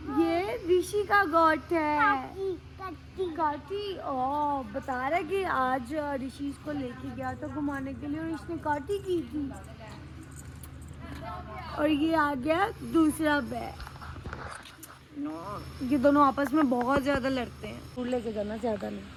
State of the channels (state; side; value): identical; both; correlation 1.00